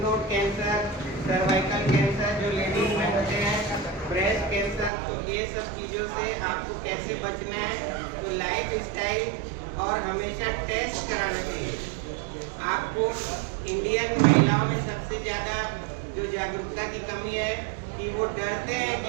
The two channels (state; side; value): drops out; left; at 4.9 s